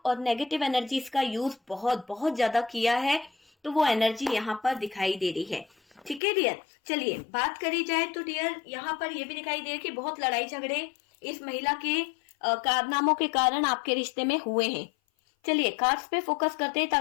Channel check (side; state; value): right; drops out; at 6.2 s